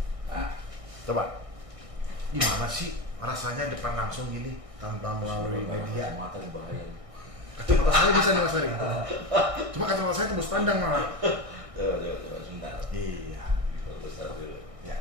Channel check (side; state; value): left; late; 1.6 ms